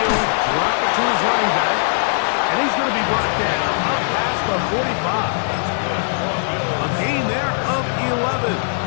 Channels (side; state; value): right; silent; 66 dB below the other